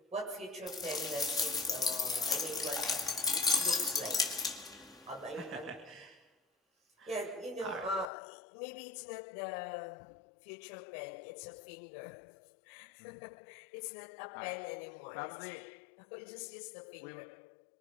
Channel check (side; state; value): right; drops out; at 8.1 s